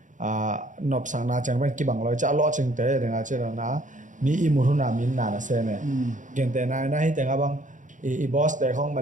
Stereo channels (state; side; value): late; left; 0.37 ms